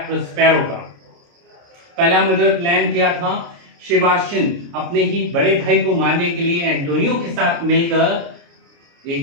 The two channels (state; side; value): late; left; 29 ms